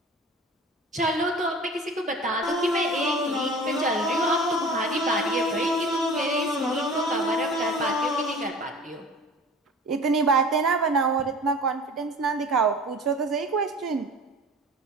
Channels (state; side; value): normal; both; correlation 0.41